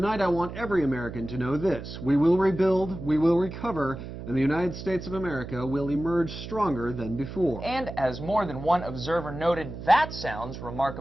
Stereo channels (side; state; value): right; noise; hum, 10 dB below the sound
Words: I want every American to know this: we will rebuild, we will recover, and the United States of America will emerge stronger than before. And as more than one observer noted, that sounds